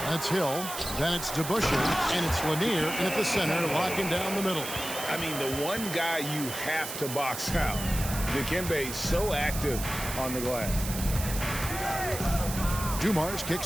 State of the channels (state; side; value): noise; right; hiss, 7 dB below the sound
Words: That's Hill. Then it's DeBusschere. And it's Lanier in at the center, locking down the middle. I mean, the one guy you have to box out. Dikembe so active on the glass. Dumars